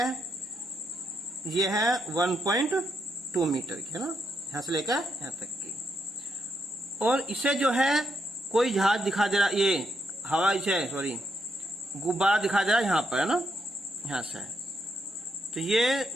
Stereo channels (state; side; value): normal; both; correlation 0.79